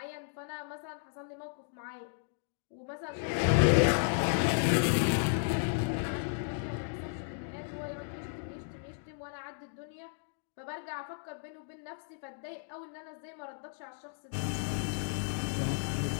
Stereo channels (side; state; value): right; silent; digital silence